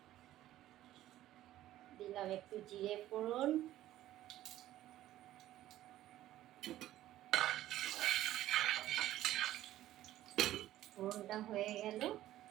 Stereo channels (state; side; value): quieter; left; 14.0 dB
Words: দিলাম একটু জিরে ফোড়ন, ফোড়নটা হয়ে গেল,